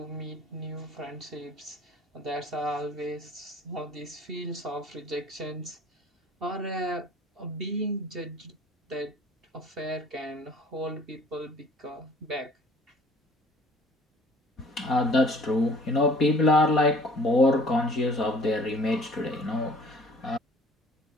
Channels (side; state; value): both; normal; correlation 0.52